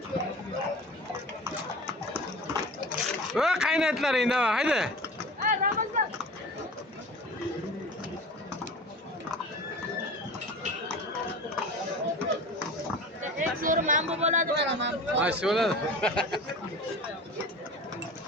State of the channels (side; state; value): both; normal; correlation 0.37